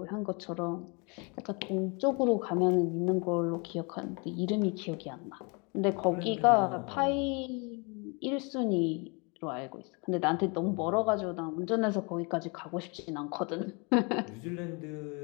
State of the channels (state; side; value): quieter; right; 31.8 dB